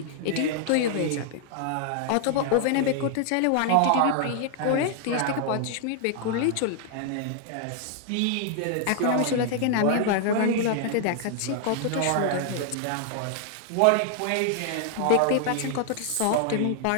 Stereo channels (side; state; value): both; different; correlation 0.00